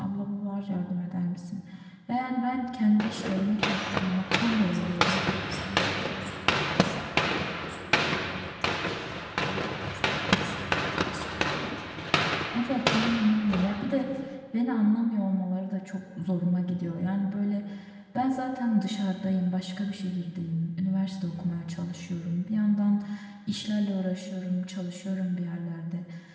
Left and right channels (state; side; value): identical; both; correlation 1.00